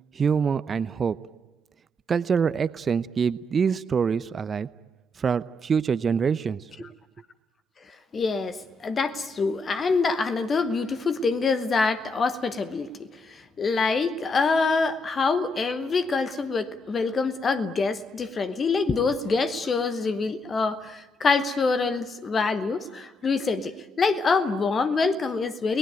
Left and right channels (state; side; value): normal; both; correlation 0.78